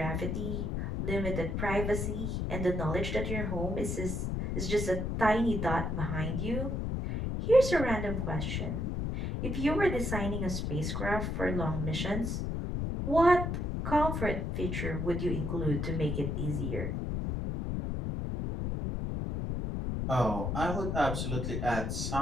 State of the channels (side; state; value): left; noise; rumble, 1 dB below the sound